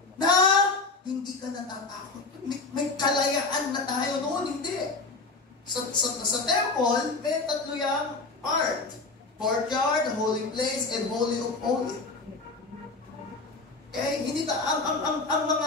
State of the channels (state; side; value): quieter; right; 3.8 dB